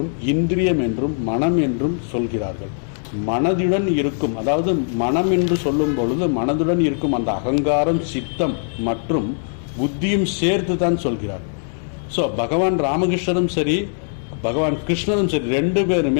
இந்திரியம் என்றும் மனம் என்றும் சொல்கிறார்கள். மனதுடன் இருக்கும், அதாவது மனம் என்று சொல்லும் பொழுது மனதுடன் இருக்கும் அந்த அகங்காரம், சித்தம் மற்றும் புத்தியும் சேர்த்து தான் சொல்கிறார். ஸோ பகவான் ராமகிருஷ்ணரும் சரி பகவான் கிருஷ்ணரும் சரி 2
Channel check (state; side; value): silent; right; digital silence